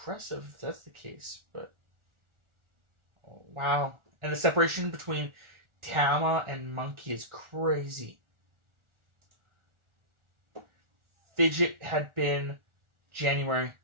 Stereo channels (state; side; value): late; left; 1.4 ms